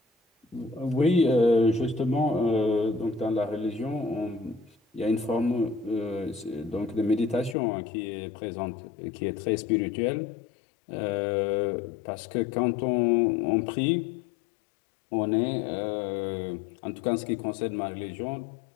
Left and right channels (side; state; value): right; drops out; at 7.6 s